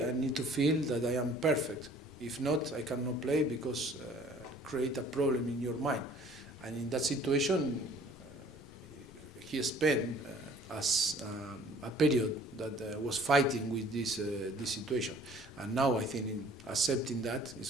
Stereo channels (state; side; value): normal; both; correlation 0.53